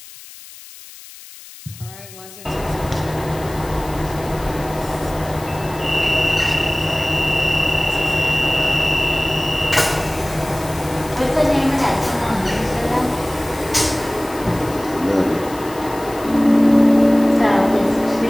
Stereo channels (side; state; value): left; noise; hiss, 18 dB below the sound